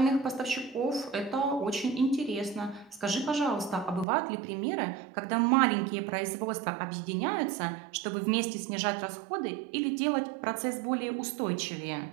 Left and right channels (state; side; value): drops out; left; at 4.0 s